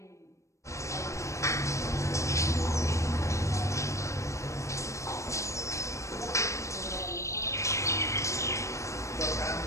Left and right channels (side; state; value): right; late; 0.15 ms